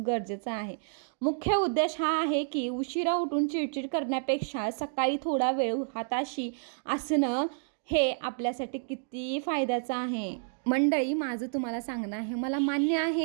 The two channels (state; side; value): silent; left; digital silence